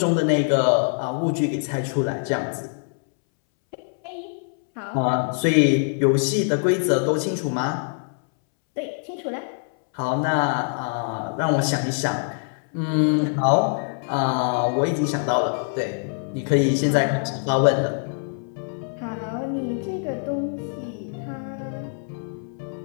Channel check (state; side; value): silent; right; 63 dB below the other